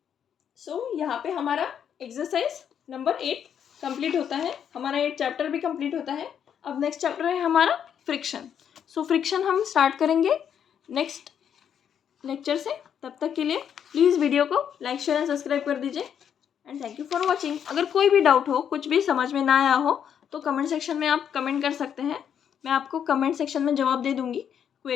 सो यहाँ पे हमारा एक्सरसाइज नंबर 8 कंप्लीट होता है, हमारा 8 चैप्टर भी कंप्लीट होता है। अब नेक्स्ट चैप्टर है हमारा फ्रिक्शन। सो फ्रिक्शन हम स्टार्ट करेंगे नेक्स्ट लेक्चर से। तब तक के लिए प्लीज़ वीडियो को लाइक शेयर एंड सब्सक्राइब कर दीजिए and thank you for watching. अगर कोई भी डाउट हो, कुछ भी समझ में ना आया हो तो कमेंट सेक्शन में आप कमेंट कर सकते हैं, मैं आपको कमेंट सेक्शन में जवाब दे दूँगी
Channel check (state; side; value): quieter; right; 8.5 dB